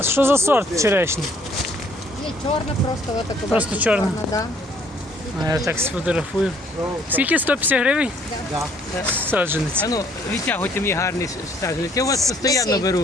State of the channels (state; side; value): normal; both; correlation 0.62